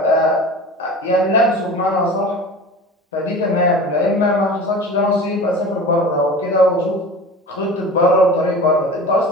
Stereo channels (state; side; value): normal; both; correlation 0.36